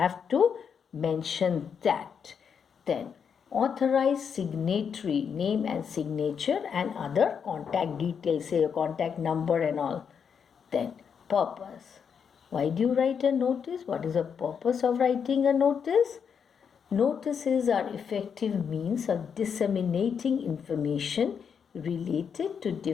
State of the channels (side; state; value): right; quieter; 6.9 dB